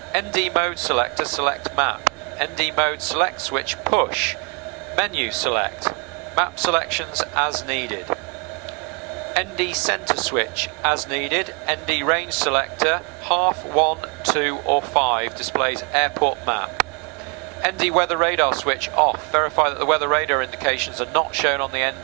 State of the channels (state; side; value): quieter; left; 34.5 dB